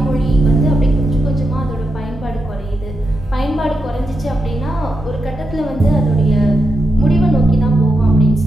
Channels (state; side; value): normal; both; correlation 0.85